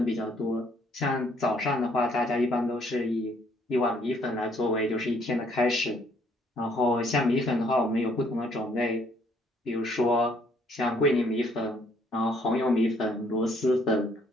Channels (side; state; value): both; normal; correlation 0.65